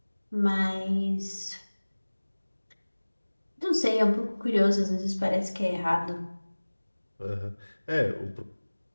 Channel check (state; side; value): inverted; both; correlation -1.00